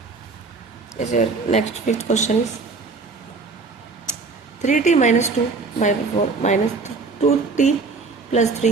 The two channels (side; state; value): left; quieter; 4.2 dB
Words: Next fifth question is 3t minus 2/4 minus 2t plus